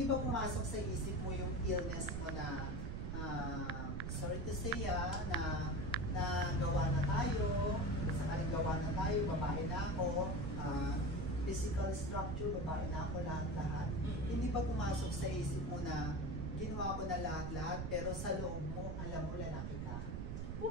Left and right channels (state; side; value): noise; right; rumble, 3 dB below the sound